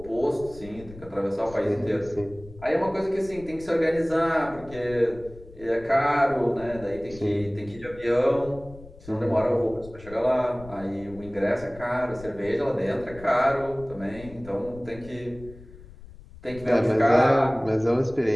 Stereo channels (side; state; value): left; noise; rumble, 18 dB below the sound